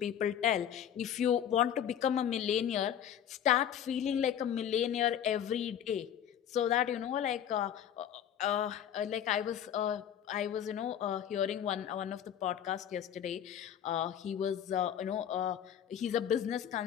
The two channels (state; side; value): quieter; right; 9.7 dB